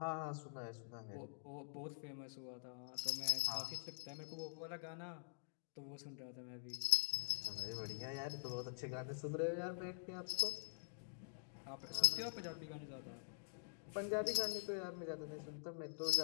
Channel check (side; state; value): right; silent; digital silence